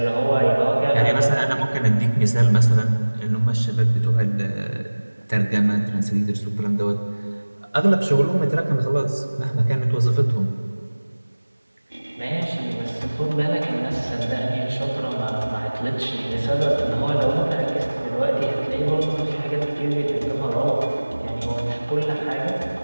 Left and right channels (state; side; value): inverted; both; correlation -1.00